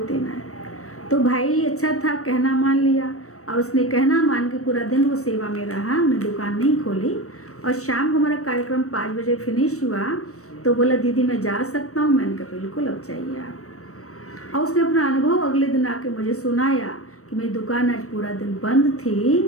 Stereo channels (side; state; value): right; late; 0.65 ms